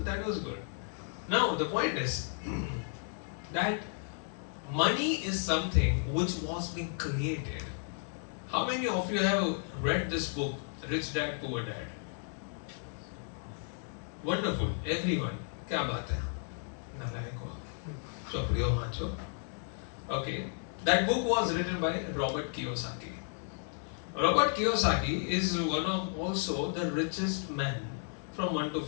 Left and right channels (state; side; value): silent; right; 55 dB below the other